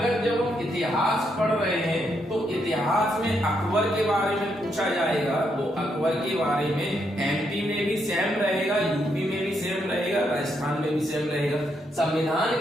जब हम इतिहास पढ़ रहे हैं तो इतिहास में अकबर के बारे में पूछा जाएगा, तो अकबर के बारे में एमपी में भी सेम रहेगा, यूपी में भी सेम रहेगा, राजस्थान में भी सेम रहेगा। संविधान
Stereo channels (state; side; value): normal; both; correlation 0.78